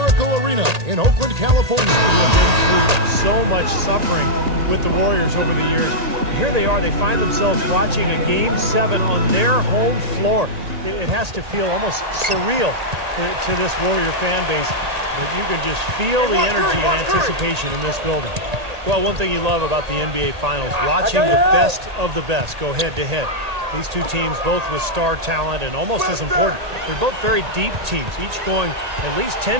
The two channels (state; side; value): late; left; 1.8 ms